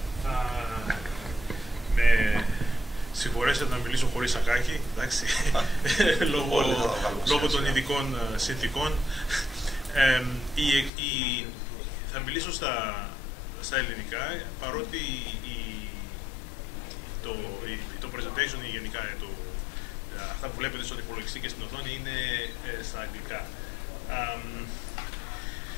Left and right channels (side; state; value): right; drops out; at 10.9 s